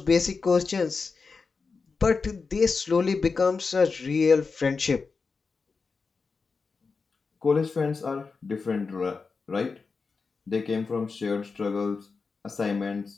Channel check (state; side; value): quieter; right; 4.7 dB